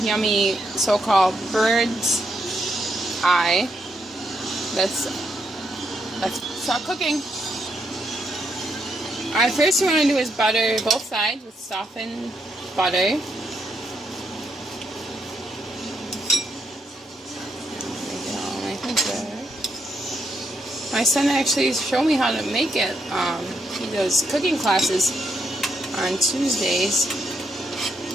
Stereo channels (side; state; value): both; normal; correlation 0.79